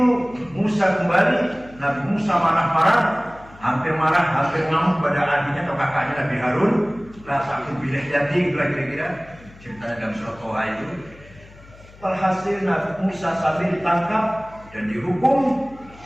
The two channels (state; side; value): noise; left; hum, 22 dB below the sound